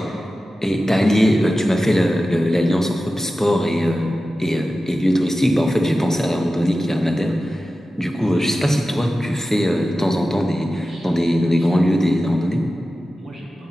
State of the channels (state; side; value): normal; both; correlation 0.94